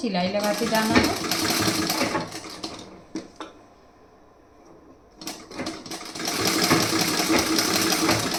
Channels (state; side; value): identical; both; correlation 1.00